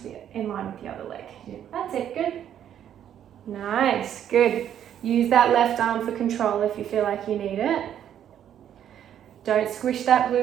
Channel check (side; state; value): left; quieter; 10.0 dB